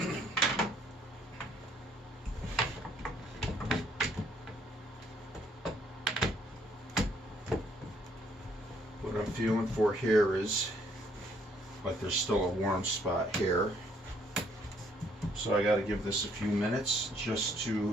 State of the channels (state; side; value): normal; both; correlation 0.66